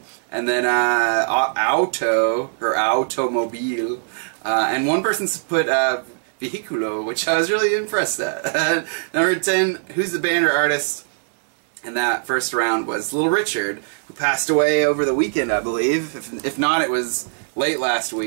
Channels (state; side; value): silent; left; digital silence